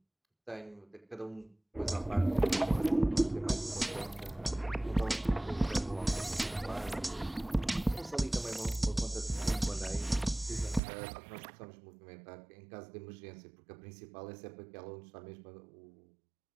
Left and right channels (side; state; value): left; drops out; at 10.8 s